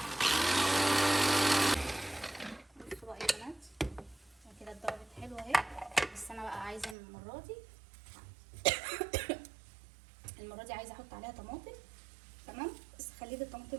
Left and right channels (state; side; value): drops out; left; at 7.0 s